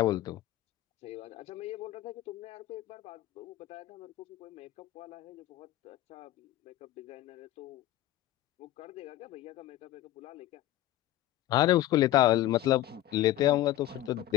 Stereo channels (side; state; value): right; quieter; 14.5 dB